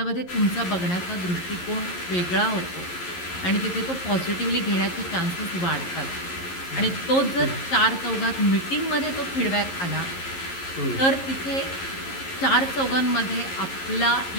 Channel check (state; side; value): late; right; 11 ms